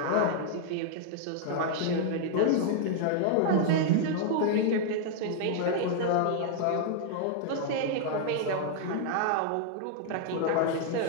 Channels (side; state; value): both; different; correlation -0.01